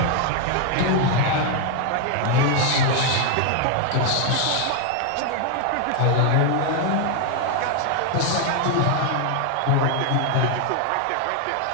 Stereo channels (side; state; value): both; different; correlation 0.00